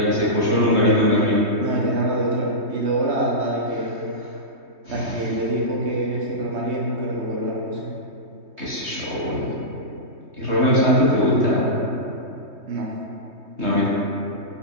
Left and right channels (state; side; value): late; left; 3.2 ms